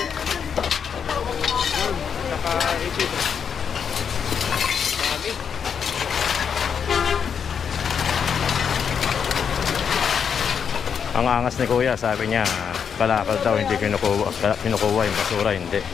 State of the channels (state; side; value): quieter; right; 7.1 dB